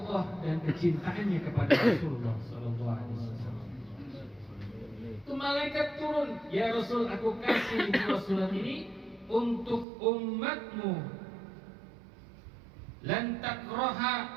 dan kecintaannya kepada Rasulullah sallallahu alaihi wasallam. Itu malaikat turun, ya Rasul, aku kasih dua surat ini untuk umatmu. Lan takraha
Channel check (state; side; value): drops out; left; at 9.9 s